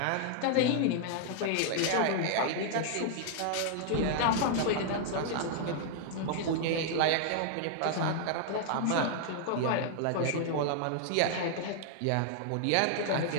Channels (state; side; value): different; both; correlation -0.01